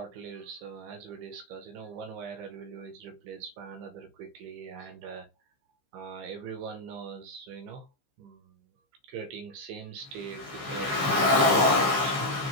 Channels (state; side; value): late; left; 15 ms